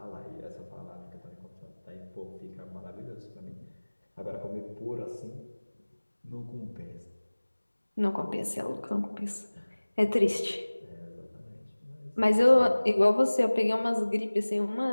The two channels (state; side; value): inverted; both; correlation -1.00